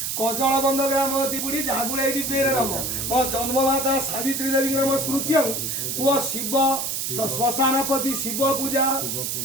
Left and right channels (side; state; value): right; noise; hiss, 2 dB below the sound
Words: कजलबंध ग्रामवती बुढ़ी जागुड़े दिव्य नम मो जन्ममाता सावित्री देवी नम स्मृत्यं कुह शिव श्मशानपति शिव पूजा